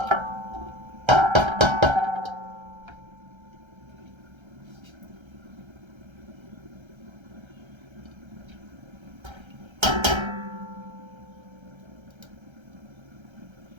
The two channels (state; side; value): late; left; 1.3 ms